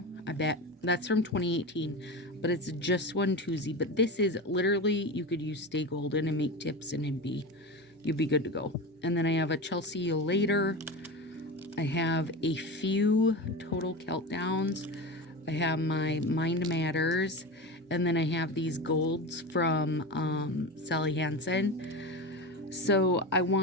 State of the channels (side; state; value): both; normal; correlation 0.25